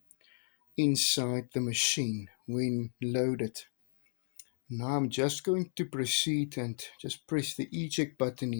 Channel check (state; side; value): silent; right; digital silence